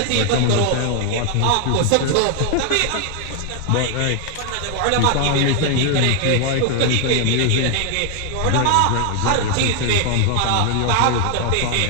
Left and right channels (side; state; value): both; different; correlation 0.00